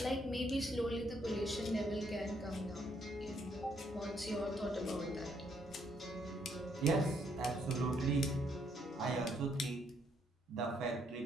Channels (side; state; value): both; normal; correlation 0.71